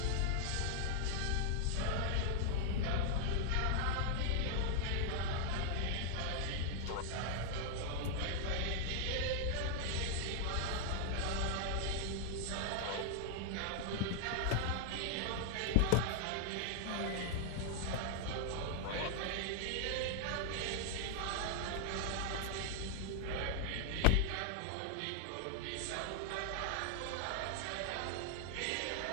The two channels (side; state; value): both; different; correlation -0.01